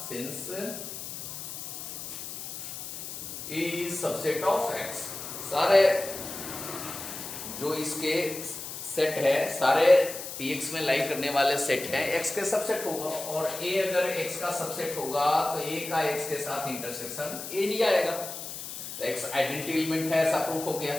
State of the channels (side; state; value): left; noise; hiss, 8 dB below the sound